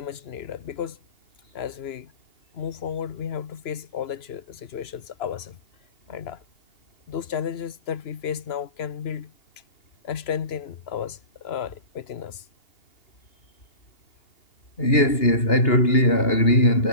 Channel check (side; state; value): right; late; 3.0 ms